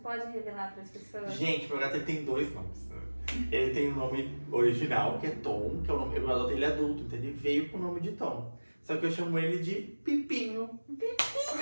pode revelar para as pessoas? Gente, meu gato ele tem 2 nomes. Ele tem o nome original, que é Tom, que é o nome. Eu adotei ele adulto, então ele veio com o nome de Tom. Só que eu chamo ele de Pipinho. Pipinho,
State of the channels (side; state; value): both; inverted; correlation -1.00